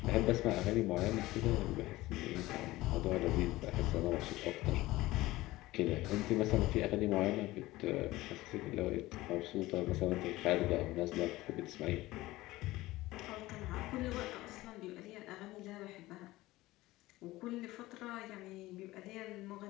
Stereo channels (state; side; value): quieter; right; 18.1 dB